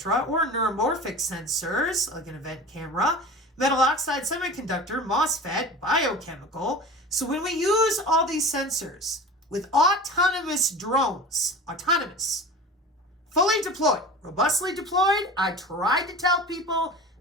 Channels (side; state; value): both; normal; correlation 0.35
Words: or neuromorphic sensors like an event camera, metal oxide semiconductor, MOSFET, biochemical. So when we use all these sensors with autonomous drones, fully deployed, robustly deployed, I tried to tell people,